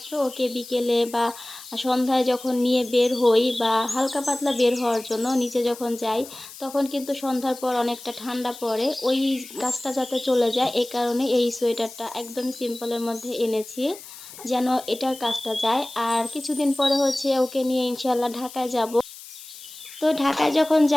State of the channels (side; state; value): left; noise; hiss, 16 dB below the sound